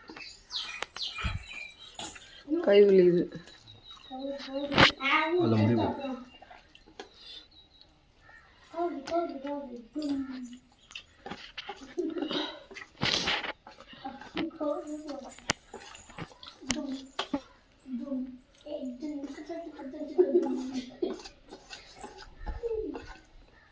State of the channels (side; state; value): both; identical; correlation 1.00